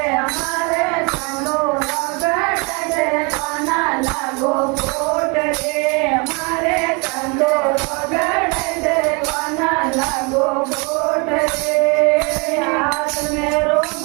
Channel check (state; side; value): quieter; left; 31.5 dB